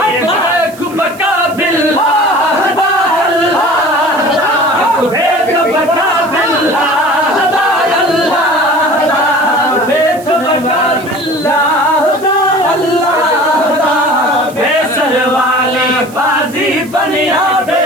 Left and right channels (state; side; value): noise; right; hiss, 21 dB below the sound